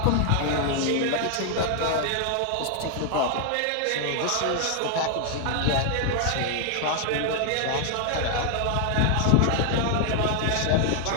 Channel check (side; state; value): both; different; correlation 0.00